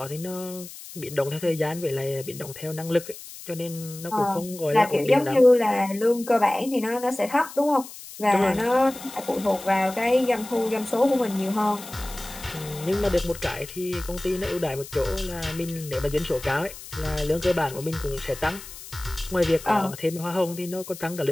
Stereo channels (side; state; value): left; noise; hiss, 14 dB below the sound